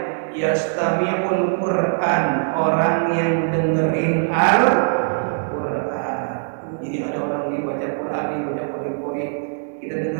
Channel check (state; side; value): silent; left; digital silence